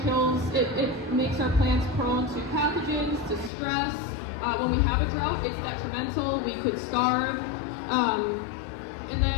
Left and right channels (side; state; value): right; drops out; at 3.5 s